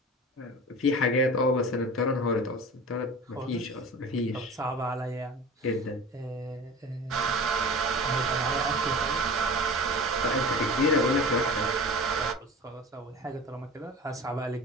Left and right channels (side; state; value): both; normal; correlation 0.36